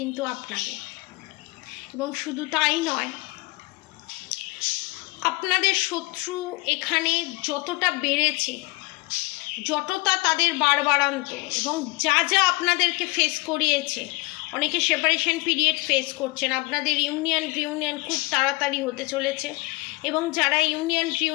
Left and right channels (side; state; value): right; quieter; 23.8 dB